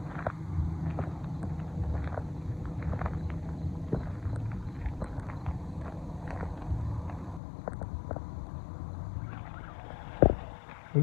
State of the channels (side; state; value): right; drops out; at 7.4 s